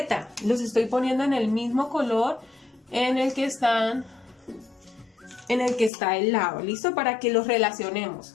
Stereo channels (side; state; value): right; drops out; at 5.9 s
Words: Los estoy poniendo en el mismo color en el que está el lado. ¿Listo? Para que los relacionemos.